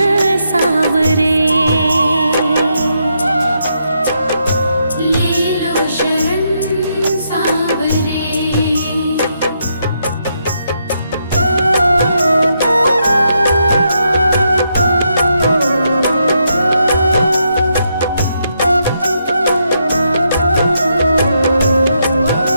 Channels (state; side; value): inverted; both; correlation -0.79